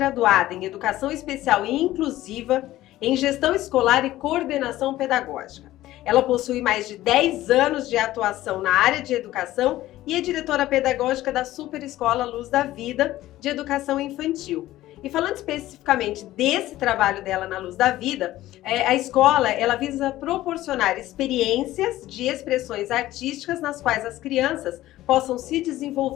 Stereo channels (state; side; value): quieter; right; 15.4 dB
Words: em Educação Especial e Inclusiva, em Gestão Escolar e Coordenação Pedagógica. Ela possui mais de 10 anos de atuação na área de educação e é diretora pedagógica da Super Escola Luz da Vida de Educação Infantil. E falando especificamente desse trabalho dela na Luz da Vida, a escola ela visa proporcionar experiências de expressões artísticas nas quais as crianças possam se